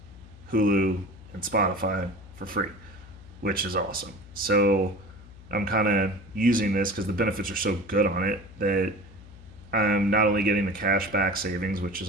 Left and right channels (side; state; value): left; noise; hum, 19 dB below the sound